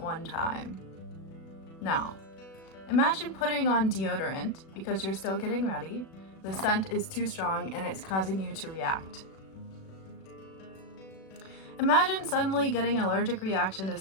time. Now, imagine putting on deodorant because you're still getting ready. The scent is too strong and it's causing you to react. Imagine suddenly getting an allergic reaction to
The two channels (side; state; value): right; late; 37 ms